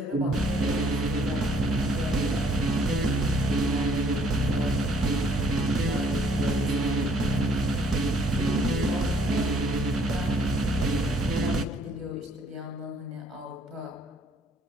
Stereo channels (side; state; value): both; normal; correlation 0.62